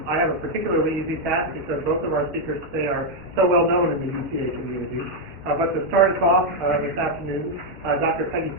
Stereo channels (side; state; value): both; normal; correlation 0.01